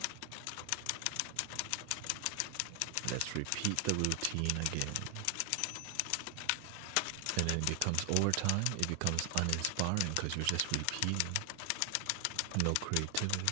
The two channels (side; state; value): both; different; correlation 0.00